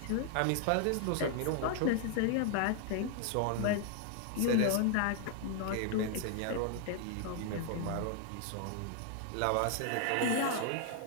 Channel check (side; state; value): both; different; correlation 0.00